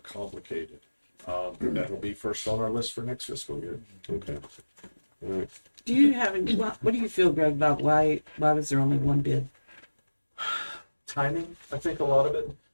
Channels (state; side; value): inverted; both; correlation -1.00